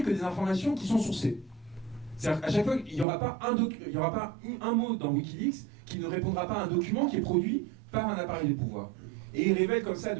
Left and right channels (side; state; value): left; drops out; at 3.1 s